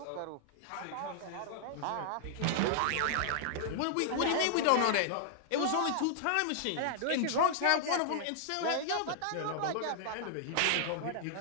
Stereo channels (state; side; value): different; both; correlation -0.01